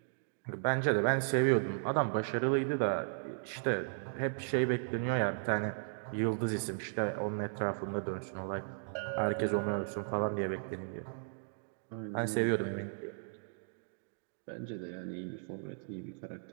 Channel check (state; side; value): silent; left; digital silence